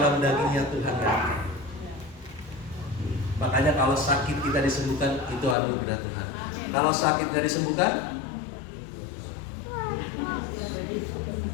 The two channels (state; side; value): drops out; right; at 5.6 s